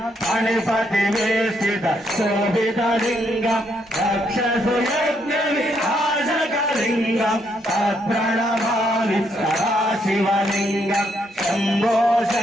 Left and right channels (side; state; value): both; normal; correlation 0.74